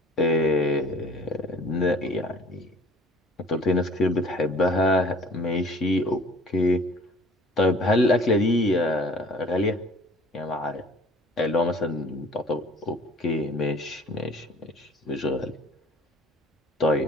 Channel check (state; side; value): normal; both; correlation 0.51